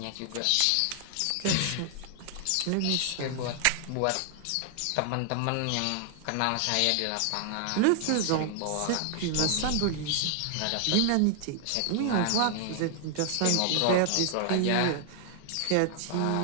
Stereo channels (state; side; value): different; both; correlation 0.00